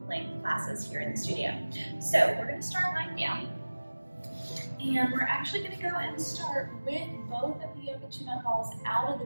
length classes here in the studio. So we're going to start lying down, and we're actually going to go and start with both of the yoga tune-up balls out of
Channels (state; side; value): inverted; both; correlation -1.00